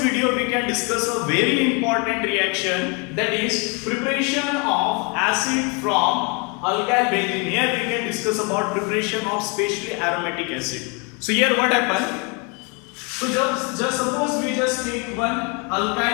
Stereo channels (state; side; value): quieter; right; 32.8 dB